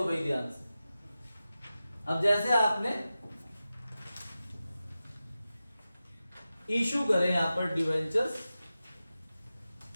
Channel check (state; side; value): inverted; both; correlation -0.93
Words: भाई ध्यान से, अब जैसे आपने इशू करे यहां पर डिवेंचर्स,